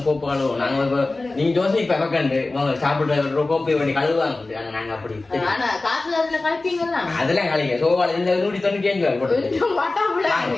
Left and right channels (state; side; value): quieter; right; 3.2 dB